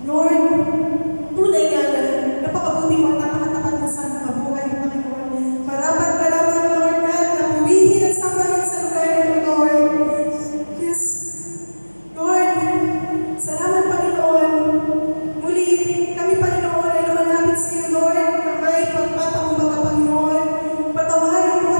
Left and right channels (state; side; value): inverted; both; correlation -1.00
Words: Lord, tunay nga na napakabuti mo at napakatapat mo sa aming kabuhay, Panginoon. Marapat ka lamang, Lord God, na puwihin at sambahin sa lugar nito, Lord. Yes, Lord, salamat, Panginoon. Muli kami, Panginoon, ay lumalapit sa iyo, Lord, na may pagpapakumbaga, Panginoon. Patawarin mo